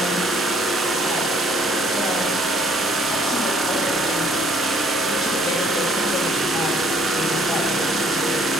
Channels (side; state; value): both; normal; correlation 0.62